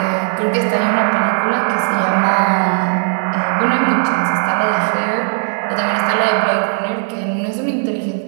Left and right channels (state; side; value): silent; left; 64 dB below the other